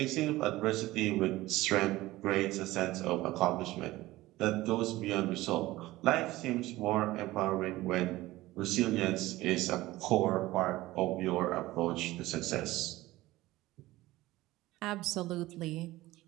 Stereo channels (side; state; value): left; quieter; 17.8 dB